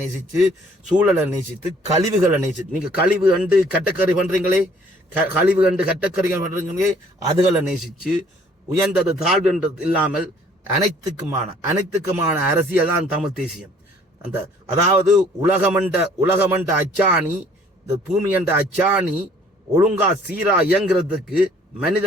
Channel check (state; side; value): normal; both; correlation 0.58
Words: நேசித்து, சூழலை நேசித்து, கழிவுகளை நேசித்து, நீங்க கழிவு கண்டு கட்டக்கறி பண்றீங்களே, அதுகளை நேசிச்சு, உயர்ந்தது தாழ்வுன்றது இல்லாமல் அனைத்துக்குமான அரசியல் தான் தமிழ் தேசியம். அதாவது உலகமண்ட அச்சாணி, இந்த பூமி என்ற அச்சாணி ஒழுங்கா சீரா இயங்குறதுக்கு